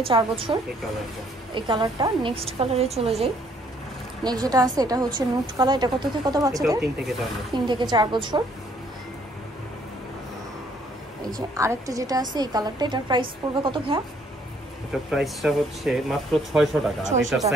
4 বছর। এই কালারটা নেক্সট কালারে চলে যাই। নেক্সট যেটা আছে এটা হচ্ছে নুট কালার। এটা কত থেকে কত বাচ্চাদের? এটা 3 থেকে 4 বছর। 3 থেকে 4 বছর। এই যে আরেকটা যেটা আছে এই কালারটা, এটার প্রাইস পড়বে কত ভাইয়া? এটা প্রাইসটা হচ্ছে মাত্র 600 টাকা। আর এটার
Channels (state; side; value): normal; both; correlation 0.65